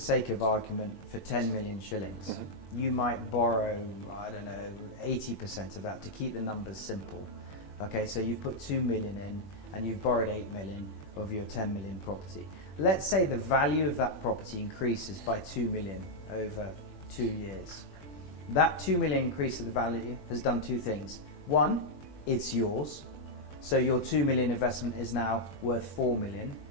of argument for 10 million shillings. You might borrow, 80% of that to keep the numbers simple. Okay, so you've put 2 million in and you've borrowed 8 million of your 10 million property. Let's say the value of that property increases by 2 million over 2 years. That 2 million increase of the value has done two things. One, it's yours. So your 2 million investment is now worth 4 million.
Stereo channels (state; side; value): late; right; 21 ms